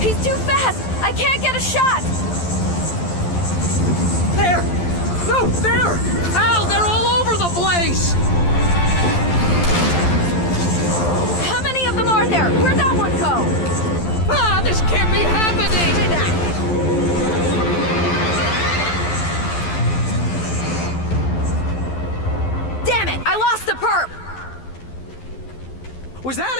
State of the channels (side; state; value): right; late; 12 ms